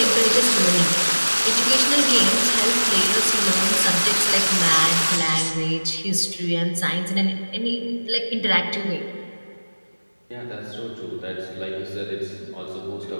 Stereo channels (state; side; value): inverted; both; correlation -1.00